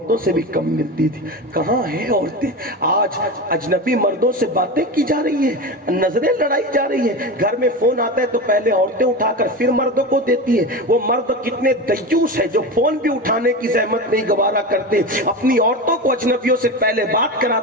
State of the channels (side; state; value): both; normal; correlation 0.24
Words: سے بھی کم ملتی تھی۔ کہاں ہیں عورتیں؟ آج اجنبی مردوں سے باتیں کی جا رہی ہیں، نظریں لڑائی جا رہی ہیں، گھر میں فون آتا ہے تو پہلے عورتیں اٹھا کر پھر مردوں کو دیتی ہیں۔ وہ مرد کتنے دیوس ہیں جو فون بھی اٹھانے کی زحمت نہیں گوارا کرتے، اپنی عورتوں کو اجنبیوں سے پہلے بات